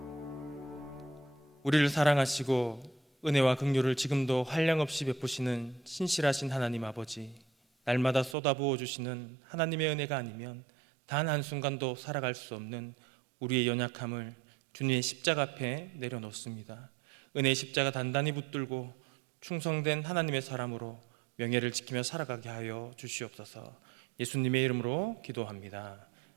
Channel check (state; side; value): drops out; left; at 8.3 s